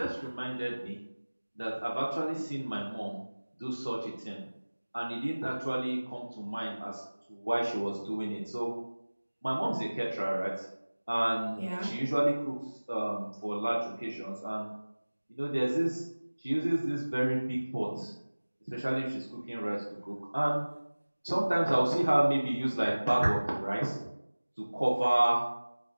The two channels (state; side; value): inverted; both; correlation -1.00